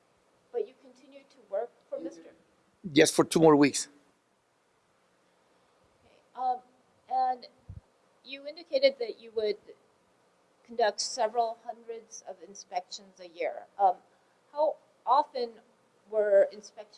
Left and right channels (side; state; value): both; identical; correlation 1.00